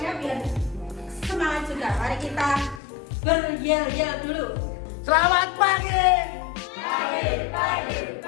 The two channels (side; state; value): right; drops out; at 2.8 s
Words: biar semangat juga. Mari kita beryel-yel dulu. Selamat pagi. Pagi.